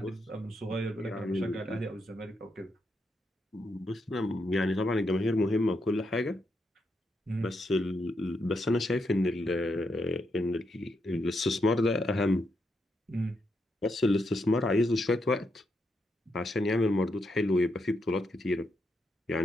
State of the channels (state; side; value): normal; both; correlation 0.81